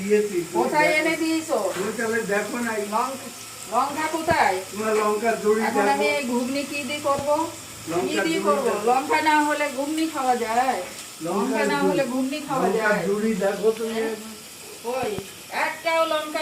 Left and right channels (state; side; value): identical; both; correlation 1.00